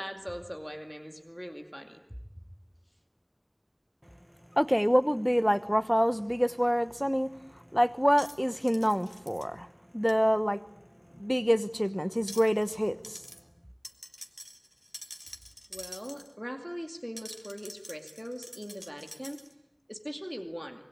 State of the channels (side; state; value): both; identical; correlation 1.00